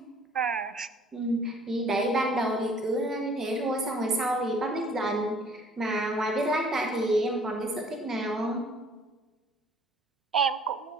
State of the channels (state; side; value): normal; both; correlation 0.55